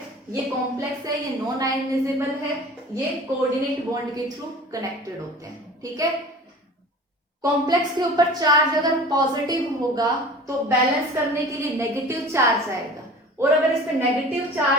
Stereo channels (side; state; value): both; normal; correlation 0.41